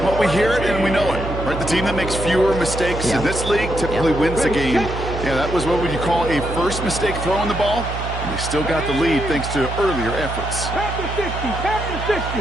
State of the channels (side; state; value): right; noise; hum, 6 dB below the sound